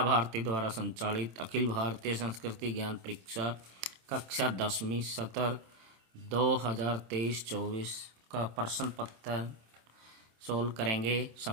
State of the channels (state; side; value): late; left; 27 ms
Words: भारती द्वारा संचालित अखिल भारतीय संस्कृति ज्ञान परीक्षा कक्षा 10वीं सत्र 2023-24 का प्रश्न पत्र सोल्व करेंगे।